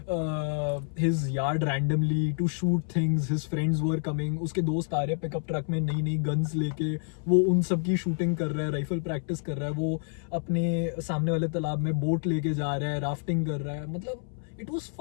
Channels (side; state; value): right; silent; 59 dB below the other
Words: his yard randomly to shoot things. His friends were coming. उसके दोस्त आ रहे हैं pickup truck में नई नई guns लेके, वो उन सब की शूटिंग कर रहा है, राइफल प्रैक्टिस कर रहा है, वो अपने सामने वाले तालाब में बोट लेके जा रहा है, राफ्टिंग कर रहा है. मतलब it was